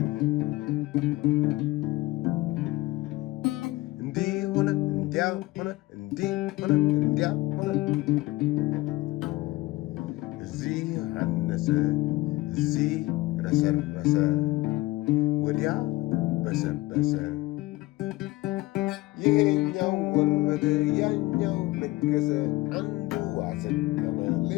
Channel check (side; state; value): right; quieter; 19.8 dB